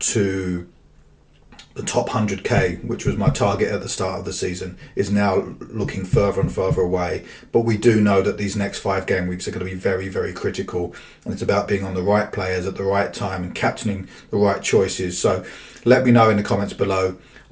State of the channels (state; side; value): identical; both; correlation 1.00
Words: the top 100k, which was my target at the start of the season, is now looking further and further away. But we do know that these next 5 game weeks are going to be very, very critical, and it's about being on the right players at the right time and captaining the right choices. So let me know in the comments below.